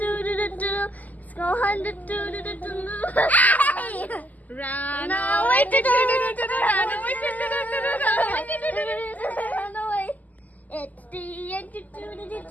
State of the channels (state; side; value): late; right; 0.079 ms